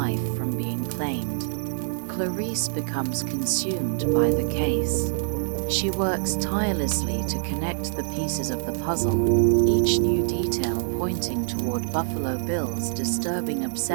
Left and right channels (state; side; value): silent; left; digital silence